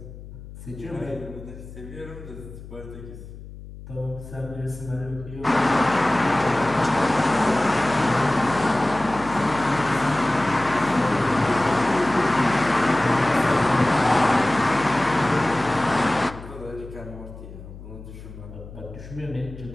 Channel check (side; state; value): left; noise; hum, 15 dB below the sound